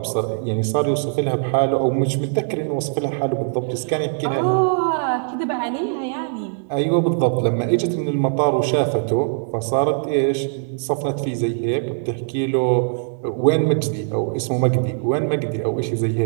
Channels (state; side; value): silent; left; digital silence